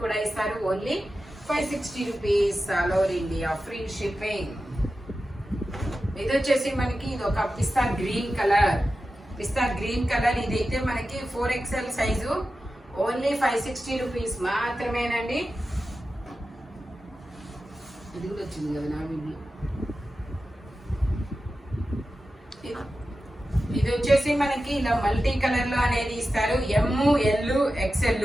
కూడా ఇస్తారు. Only 560 rupees all over India free shipping. ఇది వచ్చేసి మనకి ఇది ఒక పిస్తా గ్రీన్ కలర్. ఇదైతే మనకి 4XL సైజు. ఓన్లీ 560 రూపీస్ మాత్రమేనండి. ఇది కూడా వచ్చింది కదా నా వీడియో. ఇది వచ్చేసి మనకి ఇలా మల్టీ కలర్ లో అనేది ఇస్తారు. ML XL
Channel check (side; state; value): both; normal; correlation 0.92